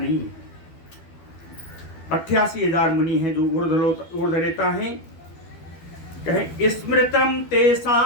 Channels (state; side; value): late; right; 12 ms